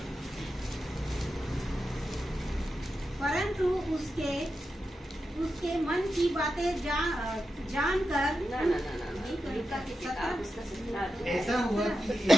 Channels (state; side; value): normal; both; correlation 0.89